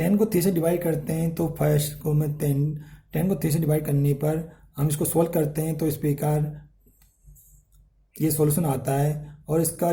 को 3 से डिवाइड करते हैं तो फर्स्ट को मैं 10 को 3 से डिवाइड करने पर हम इसको सॉल्व करते हैं तो इस प्रकार ये सॉल्यूशन आता है। और इसका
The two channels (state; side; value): identical; both; correlation 1.00